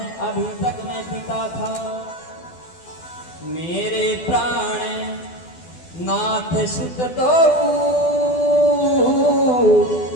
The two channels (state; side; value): late; right; 12 ms